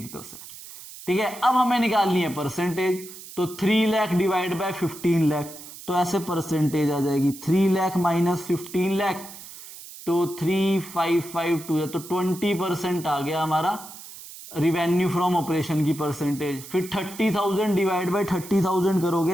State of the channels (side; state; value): right; noise; hiss, 15 dB below the sound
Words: है। ठीक है, अब हमें निकालनी है परसेंटेज, तो 3 लाख डिवाइड बाय 15 लाख, तो ऐसे परसेंटेज आ जाएगी 3 लाख माइनस 15 लाख, तो 3,552 है, तो 20% आ गया हमारा रिवेन्यू फ्रॉम ऑपरेशन की परसेंटेज। फिर 30,000 डिवाइड बाय 30,000